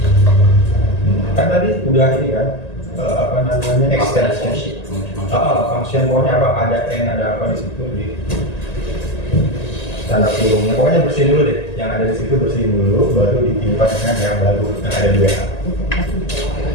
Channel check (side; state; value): right; late; 1.9 ms